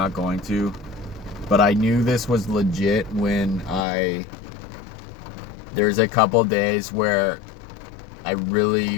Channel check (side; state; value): right; drops out; at 3.9 s